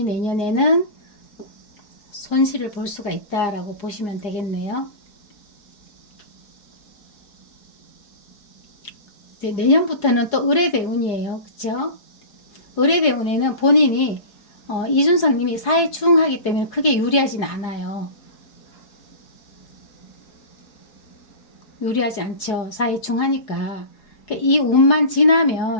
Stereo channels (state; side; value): late; right; 4.8 ms